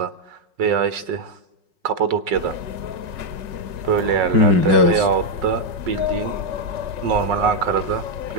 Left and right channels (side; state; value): left; late; 5.4 ms